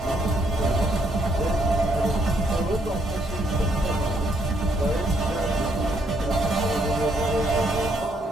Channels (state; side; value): normal; both; correlation 0.72